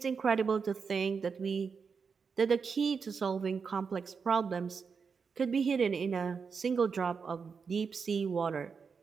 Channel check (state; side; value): quieter; left; 5.6 dB